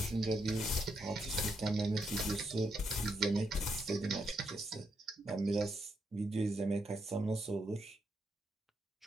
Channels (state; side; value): normal; both; correlation 0.80